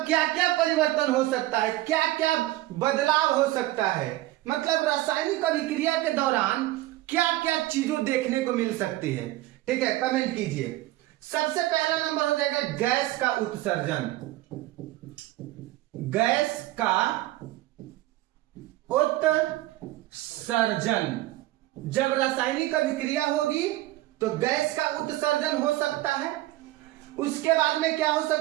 क्या क्या परिवर्तन हो सकता है, क्या क्या बदलाव हो सकता है, मतलब रासायनिक अभिक्रिया के दौरान क्या क्या चीजों देखने को मिल सकती है। ठीक है, कमेंट कीजिए। सबसे पहला नंबर हो जाएगा गैस का उत्सर्जन। गैस का उत्सर्जन, जब रासायनिक अभिक्रिया होगी तो गैस का उत्सर्जन हो सकता है। उसके बाद में क्या हो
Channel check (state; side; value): quieter; left; 16.9 dB